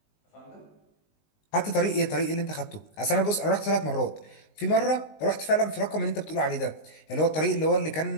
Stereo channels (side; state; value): right; late; 19 ms